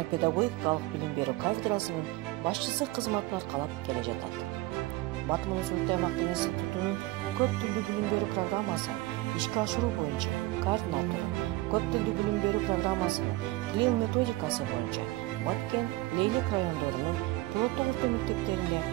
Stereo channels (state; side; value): quieter; left; 19.6 dB